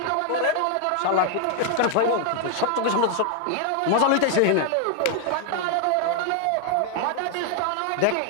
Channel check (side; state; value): both; different; correlation 0.00